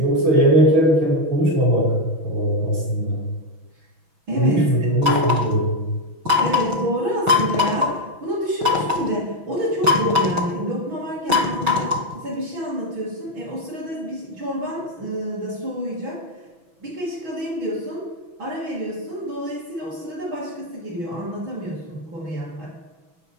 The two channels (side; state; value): left; late; 6.1 ms